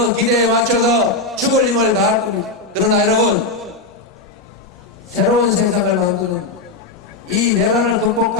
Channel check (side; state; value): right; quieter; 3.2 dB